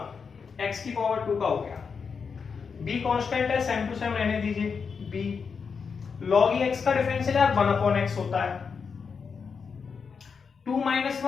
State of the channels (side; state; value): right; quieter; 5.7 dB